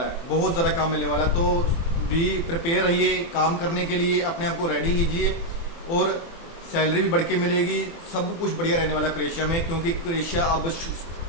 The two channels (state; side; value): late; right; 24 ms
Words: है, बहुत ज़्यादा काम मिलने वाला है। तो भी प्रिपेयर रहिए काम करने के लिए, अपने आप को रेडी कीजिए, और सैलरी भी बढ़ के मिलेगी, सब कुछ बढ़िया रहने वाला है क्रोएशिया में, क्योंकि क्रोएशिया अब